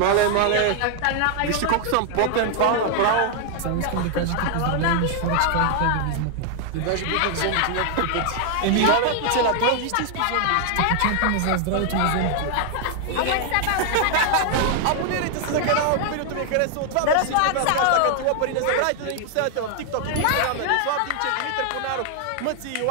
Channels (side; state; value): both; different; correlation 0.00